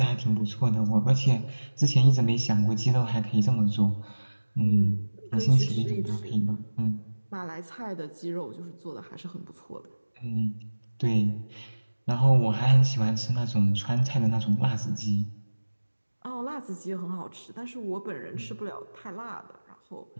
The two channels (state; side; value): inverted; both; correlation -1.00